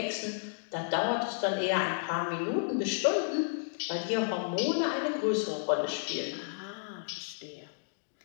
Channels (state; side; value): silent; right; digital silence